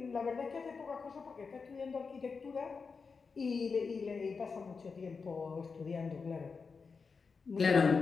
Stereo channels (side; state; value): right; quieter; 5.0 dB